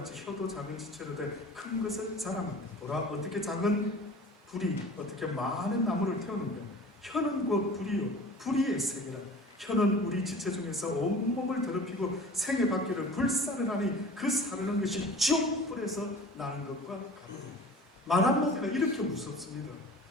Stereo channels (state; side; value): normal; both; correlation 0.42